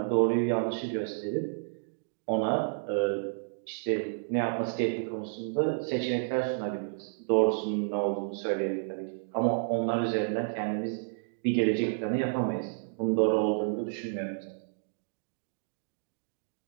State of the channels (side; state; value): left; silent; digital silence